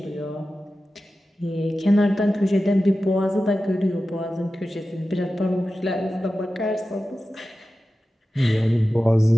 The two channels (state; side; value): normal; both; correlation 0.94